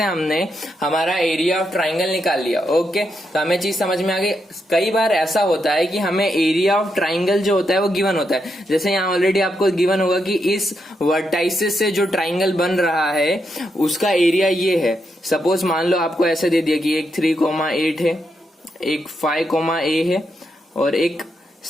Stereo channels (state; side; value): normal; both; correlation 0.82